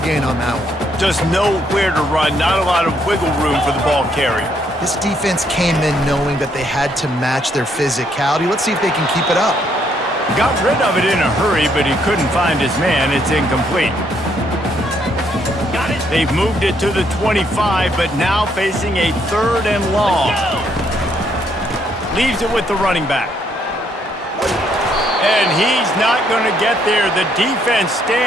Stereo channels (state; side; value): normal; both; correlation 0.71